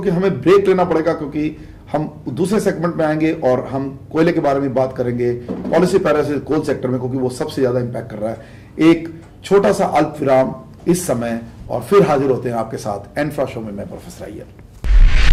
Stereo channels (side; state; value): both; identical; correlation 1.00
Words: हमें break लेना पड़ेगा, क्योंकि हम दूसरे सेगमेंट में आएंगे और हम कोयले के बारे में बात करेंगे, पॉलिसी पैरासिस कोल सेक्टर में, क्योंकि वो सबसे ज्यादा इंपैक्ट कर रहा है। एक छोटा सा अल्प विराम इस समय और फिर हाजिर होते हैं आपके साथ एनफ्रा शो में। मैं professor Iyer.